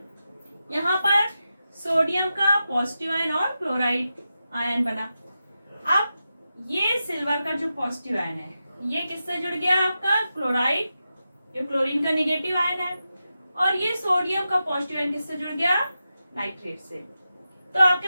यहाँ पर सोडियम का पॉजिटिव आयन और क्लोराइड आयन बना। अब ये सिल्वर का जो पॉजिटिव आयन है ये किससे जुड़ गया, आपका क्लोराइड, जो क्लोरीन का निगेटिव आयन है, और ये सोडियम का पॉजिटिव आयन किससे जुड़ गया, नाइट्रेट से। तो आपके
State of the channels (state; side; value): inverted; both; correlation -0.90